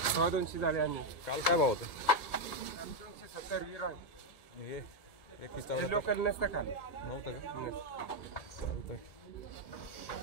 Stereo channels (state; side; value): late; right; 1.6 ms